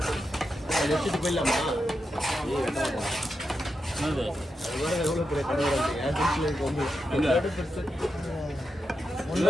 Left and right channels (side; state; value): both; normal; correlation 0.87